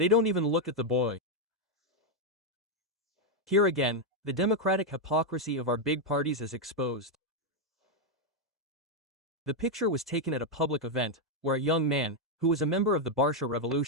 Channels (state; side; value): normal; both; correlation 0.01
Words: don't even look at the boy. Here again, the democratic hypocrisy of our big parties is exposed. The picture was taken at a public event, where a young man, who was a member of the Barsha